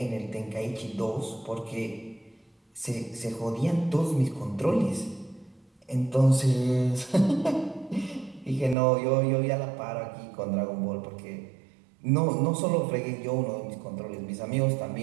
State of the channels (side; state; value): left; drops out; at 8.8 s